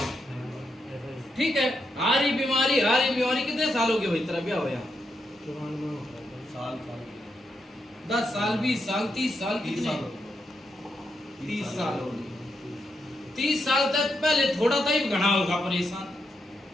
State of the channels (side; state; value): both; normal; correlation 0.82